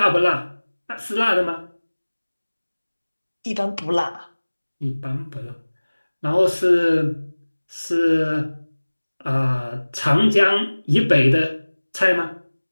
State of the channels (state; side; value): inverted; both; correlation -1.00